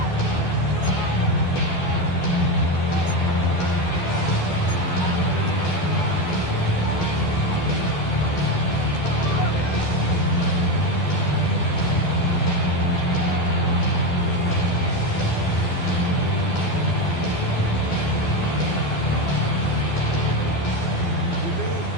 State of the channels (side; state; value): right; late; 12 ms